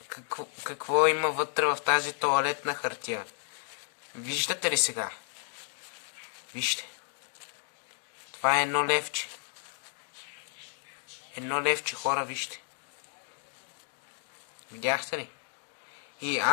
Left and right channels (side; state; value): right; silent; 56 dB below the other